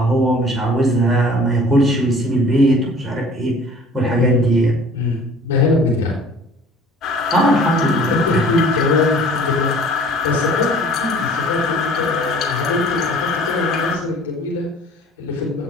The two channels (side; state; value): both; normal; correlation 0.49